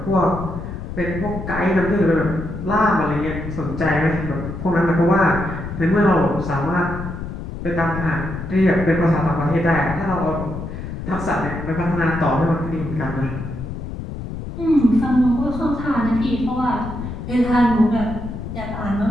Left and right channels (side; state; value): left; noise; rumble, 7 dB below the sound